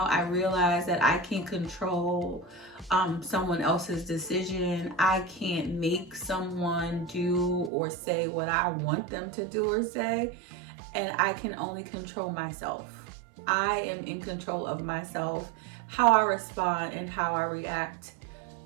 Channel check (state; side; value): drops out; left; at 7.7 s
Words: I realize that I can't control someone else's decision. I can't make someone do or say what I want them to do or say. And I can only control myself. I am in control of myself, how I respond and how I react